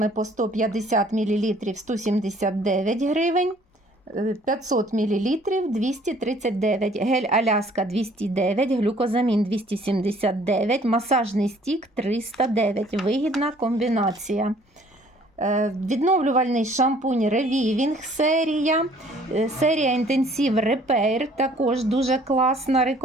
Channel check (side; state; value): both; normal; correlation 0.57